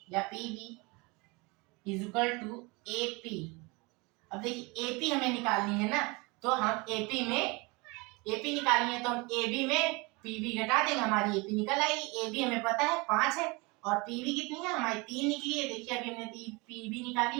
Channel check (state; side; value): quieter; left; 26.7 dB